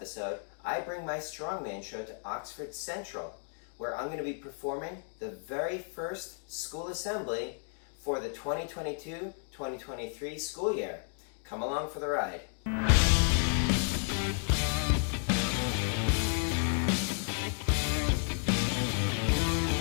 I bring my strongman show to Oxford Central, where I'm going to be performing the very first school assembly for the 2022-2023 school year. Come along for the ride.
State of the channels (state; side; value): silent; right; 55 dB below the other